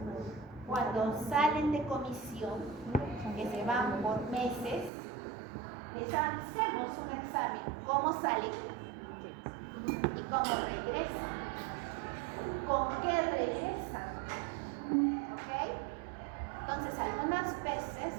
cuando salen de comisión, que se van por meses, les hacemos un examen, cómo salen y cómo regresan, con qué regresan, ¿ok? Entonces algunas veces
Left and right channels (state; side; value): drops out; left; at 4.9 s